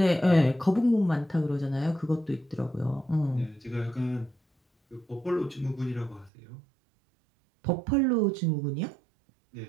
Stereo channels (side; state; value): left; drops out; at 6.3 s